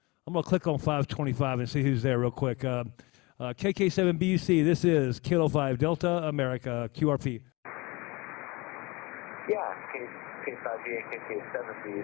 on 525 and see who's there real quick. KK7BUC. This is Kilo 5 Delta America QRP. Yeah, K5DA,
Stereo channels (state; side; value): quieter; right; 24.7 dB